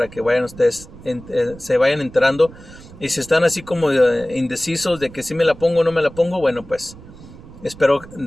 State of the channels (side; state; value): right; noise; rumble, 18 dB below the sound